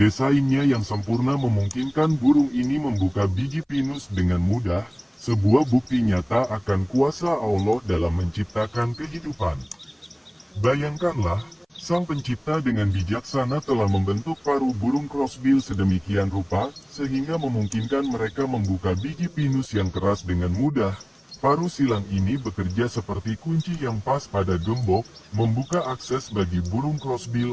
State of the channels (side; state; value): both; identical; correlation 1.00